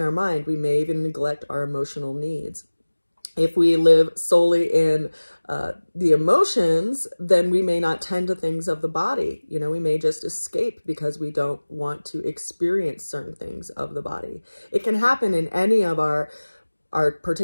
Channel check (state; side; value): inverted; both; correlation -1.00